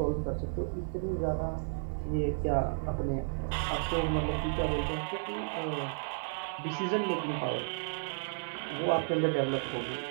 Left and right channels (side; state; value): left; silent; 56 dB below the other